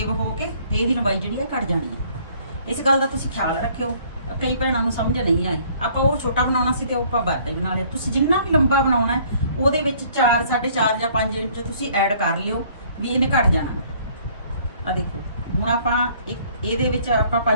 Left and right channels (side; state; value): both; inverted; correlation -0.59